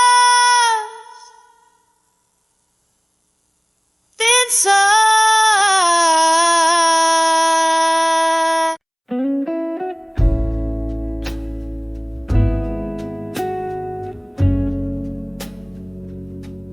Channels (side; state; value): both; identical; correlation 1.00